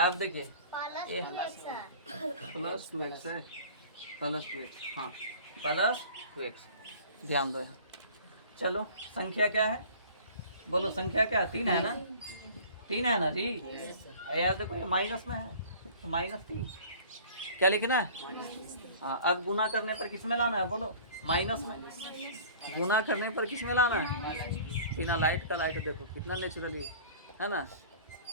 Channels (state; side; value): inverted; both; correlation -0.45